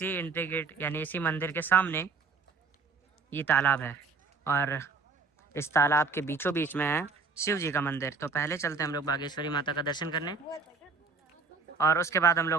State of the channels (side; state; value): left; quieter; 4.7 dB